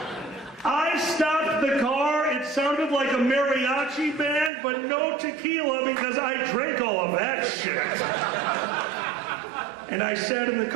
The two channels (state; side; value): drops out; left; at 4.5 s